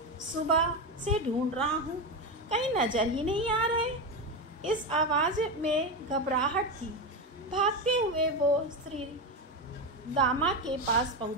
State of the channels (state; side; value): normal; both; correlation 0.15